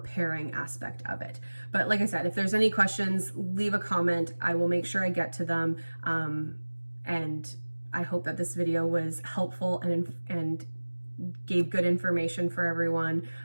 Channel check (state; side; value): inverted; both; correlation -1.00